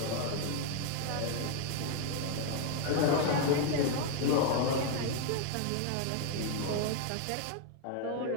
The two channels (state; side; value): different; both; correlation 0.00